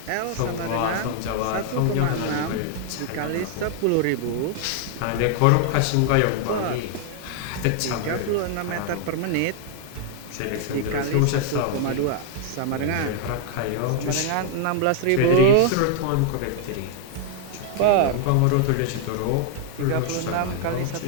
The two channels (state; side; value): different; both; correlation 0.00